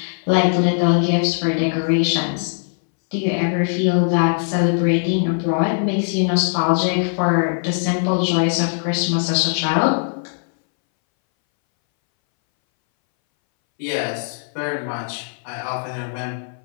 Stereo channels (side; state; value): right; silent; 63 dB below the other